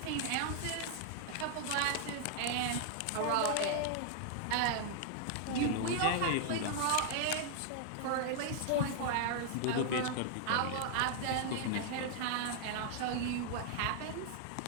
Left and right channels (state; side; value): different; both; correlation -0.01